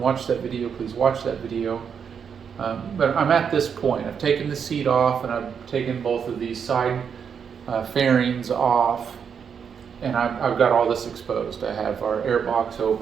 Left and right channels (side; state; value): left; quieter; 7.1 dB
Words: that video, please watch that video. But I'm at this point. I've taken the seat off and I've taken both of these side fairings off, and I've got all this exposed. I have our airbox